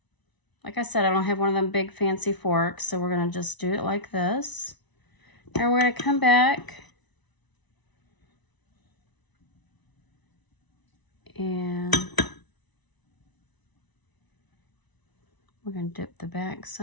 like I said, I don't have one of them big fancy forks, so we're going to just do it like this. And we're going to come back and we're going to dip the back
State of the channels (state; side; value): late; right; 1.0 ms